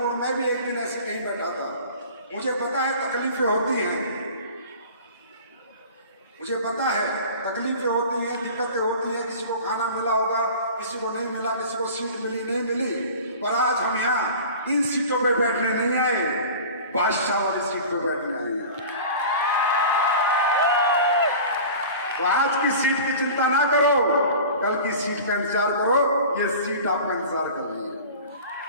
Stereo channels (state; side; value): inverted; both; correlation -0.39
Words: और मैं भी एक दिन ऐसे कहीं बैठा था, मुझे पता है तकलीफें होती हैं, मुझे पता है तकलीफें होती हैं, दिक्कतें होती हैं। किसी को खाना मिला होगा, किसी को नहीं मिला, किसी को सीट मिली नहीं मिली। पर आज हम यहाँ इन सीटों पे बैठने नहीं आए, बादशाह वाली सीट पे बैठने आए हैं। तो आज की सीट की चिंता ना करो, कल की सीट का इंतजार करो। ये सीट आपका इंतजार कर रही है।